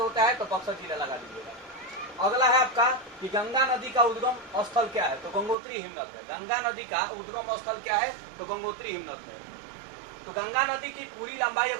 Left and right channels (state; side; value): drops out; left; at 5.6 s